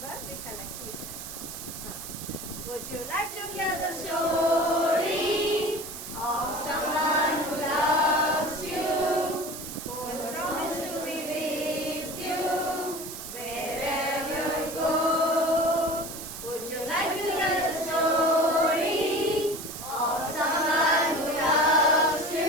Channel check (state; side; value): noise; right; hiss, 10 dB below the sound